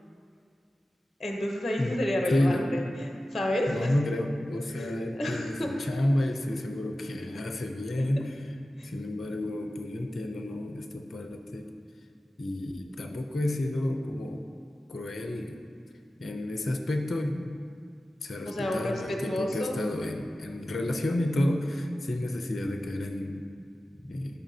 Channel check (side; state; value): both; normal; correlation 0.94